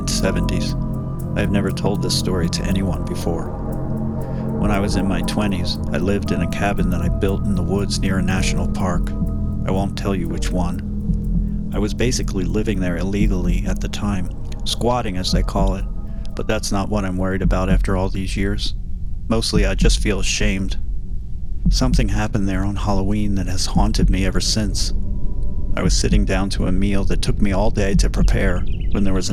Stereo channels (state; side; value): identical; both; correlation 1.00